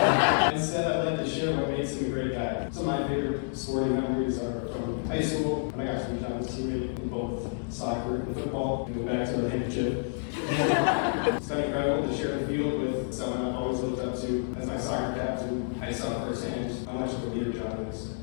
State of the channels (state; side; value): silent; right; digital silence